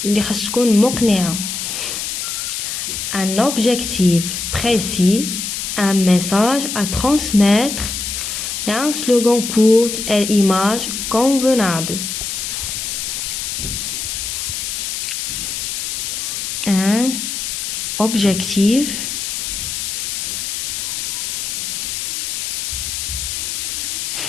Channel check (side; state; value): left; noise; hiss, 3 dB below the sound